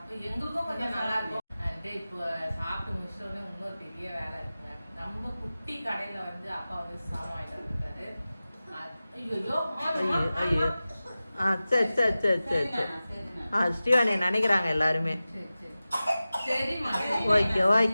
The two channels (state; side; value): inverted; both; correlation -0.96